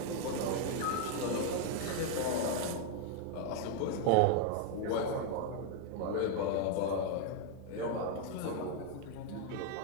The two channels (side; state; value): both; different; correlation 0.00